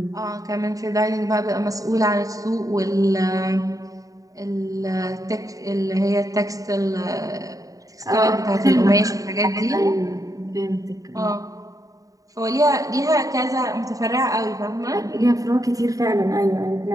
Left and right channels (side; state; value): left; late; 0.16 ms